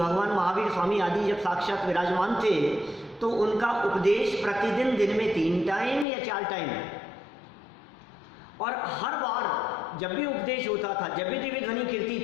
महावीर स्वामी आदि जब साक्षात विराजमान थे तो उनका उपदेश प्रतिदिन दिन में 3 टाइम या 4 टाइम, और हर बार जब भी उपदेश होता था, जब भी दिव्य ध्वनि कीर्ति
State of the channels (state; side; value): drops out; right; at 6.1 s